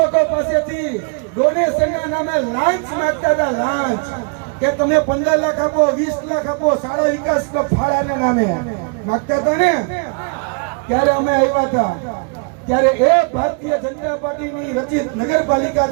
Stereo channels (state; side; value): quieter; left; 36.4 dB